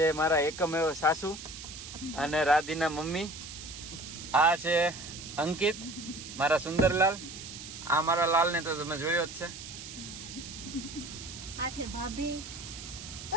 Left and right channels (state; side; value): noise; right; hiss, 11 dB below the sound